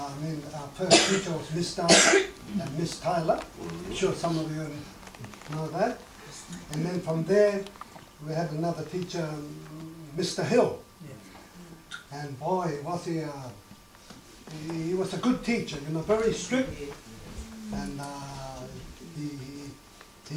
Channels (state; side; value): identical; both; correlation 1.00